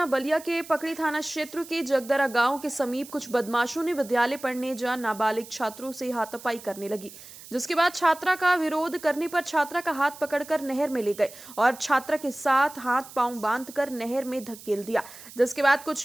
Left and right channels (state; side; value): noise; right; hiss, 17 dB below the sound